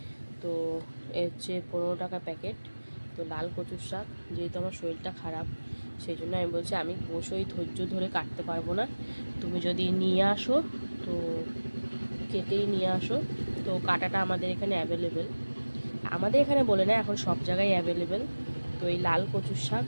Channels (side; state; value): both; inverted; correlation -1.00